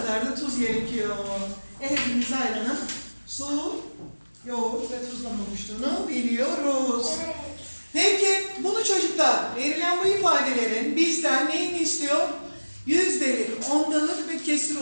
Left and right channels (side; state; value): both; inverted; correlation -1.00